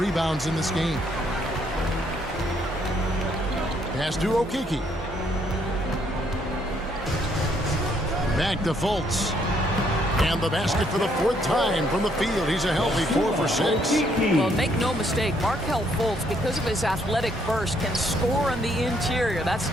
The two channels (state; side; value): normal; both; correlation 0.69